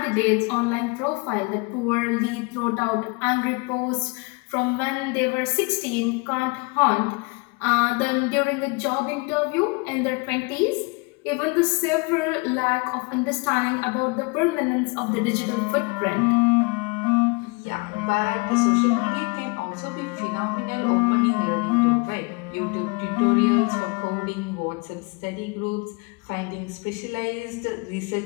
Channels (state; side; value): quieter; right; 28.9 dB